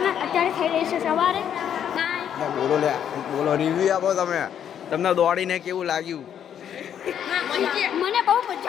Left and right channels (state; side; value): quieter; right; 9.2 dB